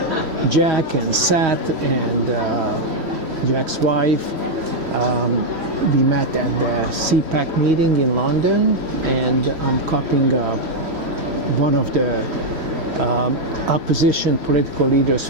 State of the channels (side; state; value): left; late; 3.1 ms